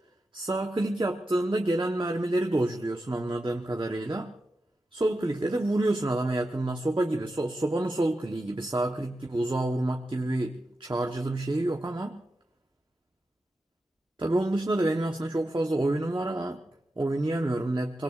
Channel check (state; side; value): normal; both; correlation 0.90